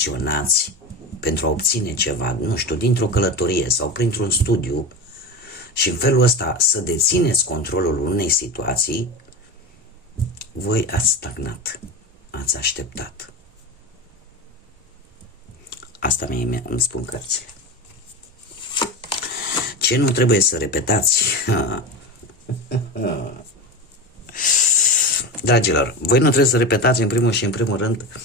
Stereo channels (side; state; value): both; normal; correlation 0.24